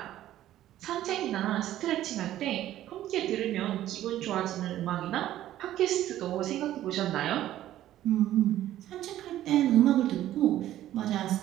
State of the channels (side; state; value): left; quieter; 13.2 dB